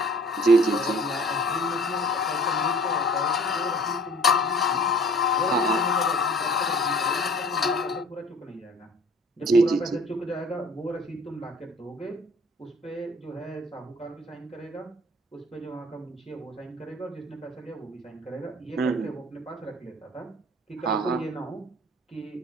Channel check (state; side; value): normal; both; correlation 0.50